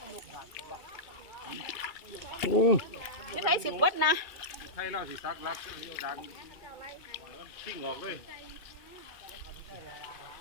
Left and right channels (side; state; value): right; late; 2.3 ms